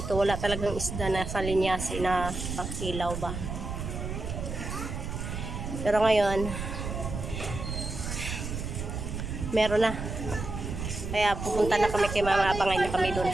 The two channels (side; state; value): right; noise; rumble, 5 dB below the sound